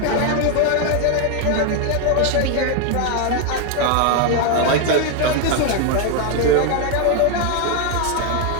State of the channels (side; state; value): both; different; correlation 0.01